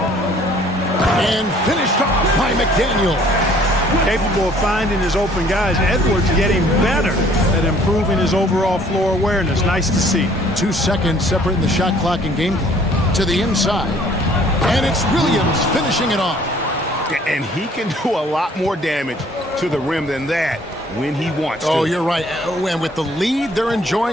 And finished off by McDaniels. Capable of finding his open guys. Edwards getting better at improving his overall floor awareness. Nice to see. 2 seconds separating the shot clock and game clock. To the inside. And it's Williams finishing it off. And he can do a lot more damage to the rim than that when he wants to. Oh, you're right. Oh, and with the lead they're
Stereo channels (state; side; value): normal; both; correlation 0.57